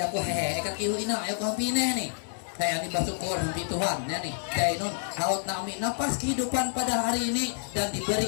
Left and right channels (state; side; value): silent; right; 59 dB below the other